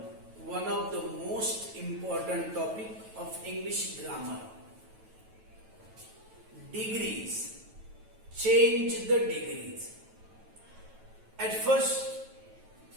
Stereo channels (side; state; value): left; late; 9.2 ms